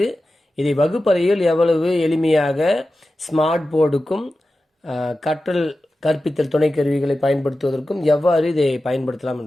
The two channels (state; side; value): normal; both; correlation 0.93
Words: இதை வகுப்பறையில் எவ்வளவு எளிமையாக ஸ்மார்ட் போர்டுக்கும் கற்பித்தல் துணை கருவிகளை பயன்படுத்துவதற்கும் எவ்வாறு இதை பயன்படுத்தலாம்